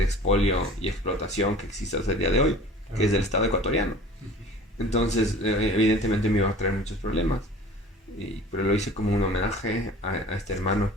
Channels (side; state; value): both; normal; correlation 0.45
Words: expolio y explotación que existe hasta el día de hoy, que es del Estado ecuatoriano. Entonces, evidentemente me iba a traer muchos problemas, pero lo hice como un homenaje a este hermano